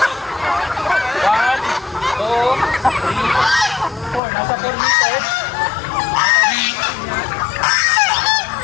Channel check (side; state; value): right; drops out; at 4.2 s